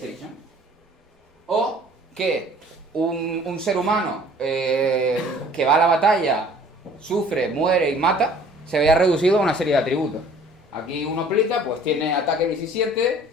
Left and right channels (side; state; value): both; normal; correlation 0.52